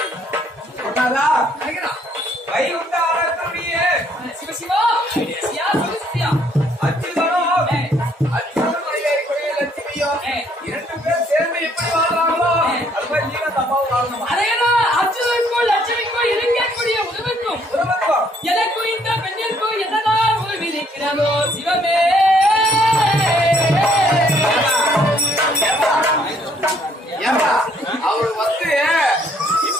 சொன்னாரா? வைகுண்ட ஆராய்ச்சியே சிவசிவா சியா சிவசியா அச்சுதனும் அச்சுதனும் ஐயாயிரம் லட்சுமியும் இரண்டு பேர் சேர்ந்து எப்படி வாழ்றாங்களோ அது மாதிரி நீங்க தப்பாவும் வாழணும். அதேதான் அச்சுதனுக்கும் லட்சுமிக்கும் இருக்கக்கூடிய உறவுக்கும் எனக்கும் இந்த பெண்ணிற்கும் என்னதான் உறவு இருக்கிறதோ சிவமே. ஏமா அவரு வந்து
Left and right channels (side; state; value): both; normal; correlation 0.66